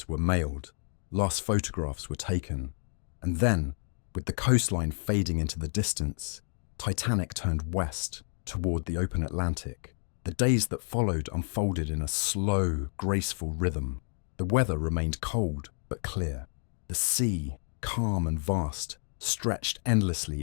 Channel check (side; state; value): right; silent; 58 dB below the other